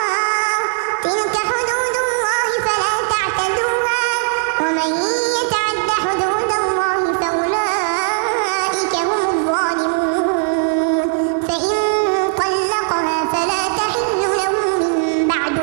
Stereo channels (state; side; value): silent; left; digital silence